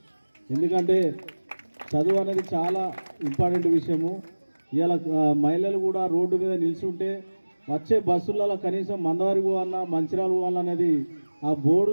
ఎందుకంటే చదువు అనేది చాలా ఇంపార్టెంట్ విషయము. ఇలా మహిళలు కూడా రోడ్డు మీద నిల్చుంటే వచ్చే బస్సులలో కనీసం మందవారి పోవాలన్నా మంచిర్యాల పోవాలన్నది ఆ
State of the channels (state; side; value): inverted; both; correlation -1.00